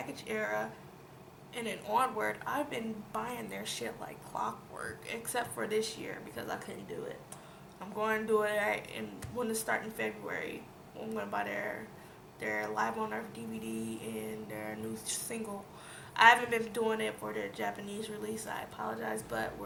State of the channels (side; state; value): both; identical; correlation 1.00